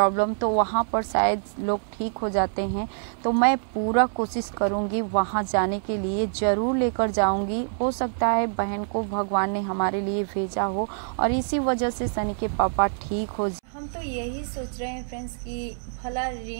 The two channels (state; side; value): silent; left; 61 dB below the other